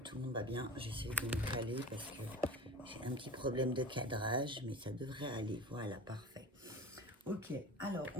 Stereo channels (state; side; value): normal; both; correlation 0.35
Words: le monde va bien. J'essaie de me caler parce que j'ai un petit problème de cadrage, mais ça devrait aller. Voilà, parfait. Ok, alors